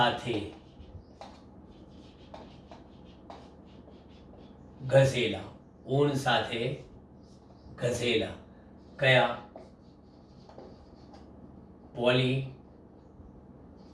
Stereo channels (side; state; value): both; identical; correlation 1.00